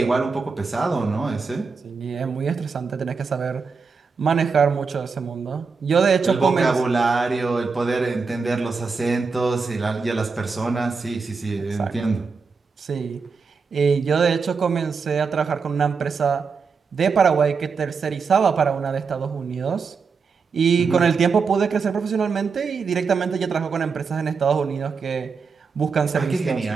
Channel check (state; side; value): quieter; left; 5.1 dB